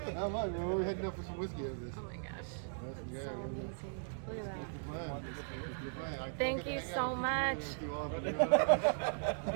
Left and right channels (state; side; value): silent; left; digital silence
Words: Not much, man. We're heading up for some whiskey after this. Oh my gosh. That's So amazing. Look at that. the plan. Thank you so much.